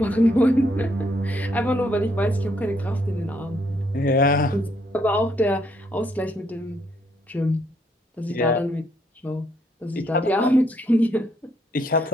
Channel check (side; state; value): both; normal; correlation 0.71